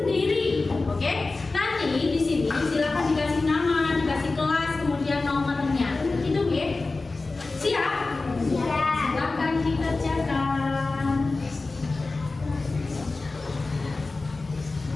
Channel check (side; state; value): right; quieter; 3.5 dB